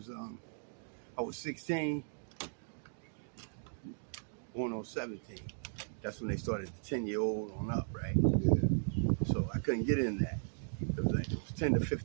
I was 16, going on 17. That's when they started the 10-year-old on up, right? Yeah. So I couldn't get in that. It was 10 to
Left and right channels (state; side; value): silent; left; digital silence